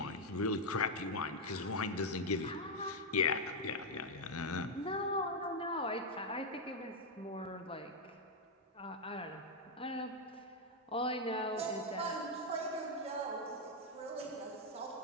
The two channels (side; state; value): both; normal; correlation 0.00